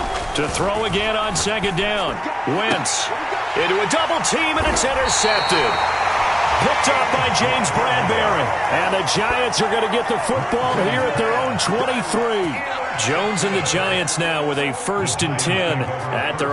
To throw again on second down. Wentz into a double team, and it's intercepted. Picked up by James Bradbury. And the Giants are going to get the football here at their own 23. Jones and the Giants now with a 1st and 10 at their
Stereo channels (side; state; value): both; identical; correlation 1.00